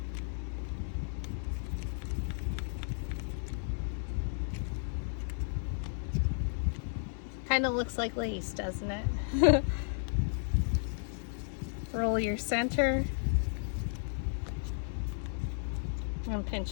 Kind of looks like lace, doesn't it? Roll your center and pinch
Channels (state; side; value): silent; right; digital silence